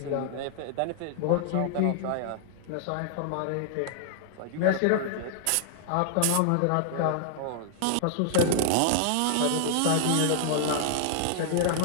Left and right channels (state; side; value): different; both; correlation -0.01